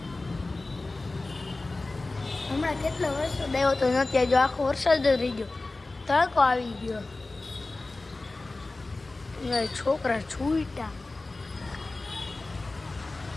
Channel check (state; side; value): quieter; right; 3.2 dB